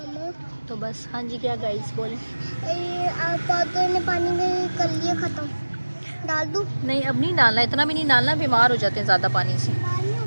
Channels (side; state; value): both; inverted; correlation -1.00